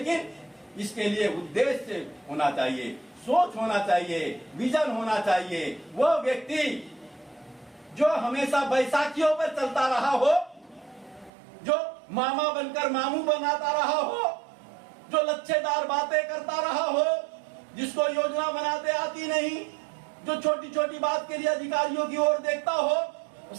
इसके लिए उद्देश्य होना चाहिए, सोच होना चाहिए, विजन होना चाहिए। वो व्यक्ति जो हमेशा बैसाखियों पर चलता रहा हो, जो मामा बनकर मामू बनाता रहा हो, जो लच्छेदार बातें करता रहा हो, जिसको योजना बनाते आती नहीं, जो छोटी छोटी बात के लिए अधिकारियों की ओर देखता हो,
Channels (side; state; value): left; drops out; at 11.3 s